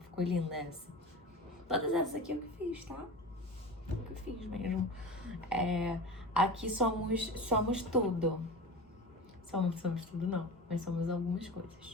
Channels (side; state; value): both; normal; correlation 0.31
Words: Ficou linda essa. Todas essas aqui eu que fiz, tá? Eu que fiz mesmo. Aqui somos tudo. Somos tudo não, mas somos algumas